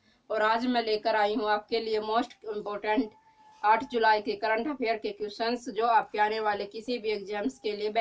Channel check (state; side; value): identical; both; correlation 1.00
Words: और आज मैं लेकर आई हूँ आपके लिए मोस्ट इम्पोर्टेंट 8 जुलाई के करंट अफेयर के क्वेश्चंस जो आपके आने वाले किसी भी एग्जाम्स के लिए